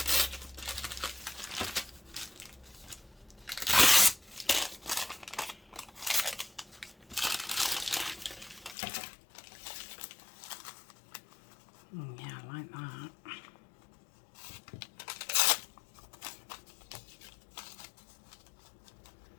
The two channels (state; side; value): drops out; right; at 8.8 s